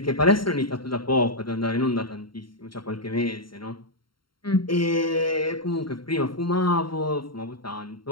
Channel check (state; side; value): late; right; 0.73 ms